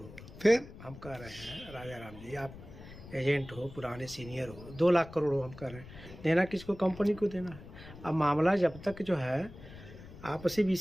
हो। फिर हम कह रहे हैं राजा राम जी, आप एजेंट हो, पुराने सीनियर हो, 2 लाख करोड़ हो, हम कह रहे हैं देना किसको, कंपनी को देना है। अब मामला जब तक जो है आपसी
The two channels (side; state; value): left; noise; rumble, 16 dB below the sound